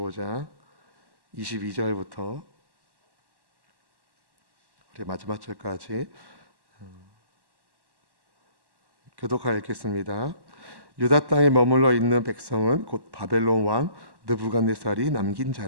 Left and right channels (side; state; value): left; late; 1.1 ms